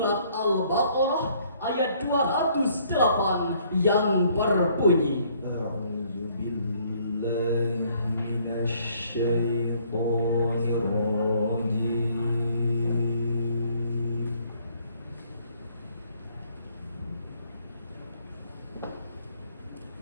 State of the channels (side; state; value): both; inverted; correlation -0.63